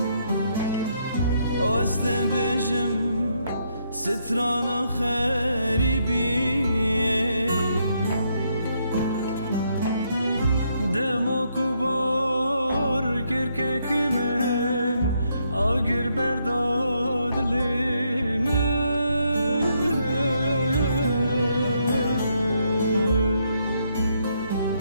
است بجم ستران خریبی دما کوبار کرکک من آگر برداد لیم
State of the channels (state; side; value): inverted; both; correlation -0.75